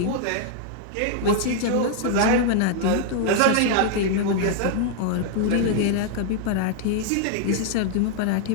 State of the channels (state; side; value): different; both; correlation 0.00